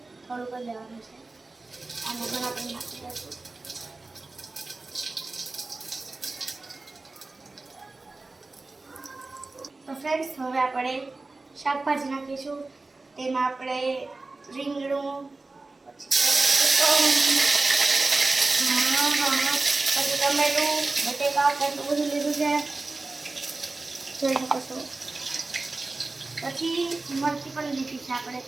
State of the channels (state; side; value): quieter; left; 3.4 dB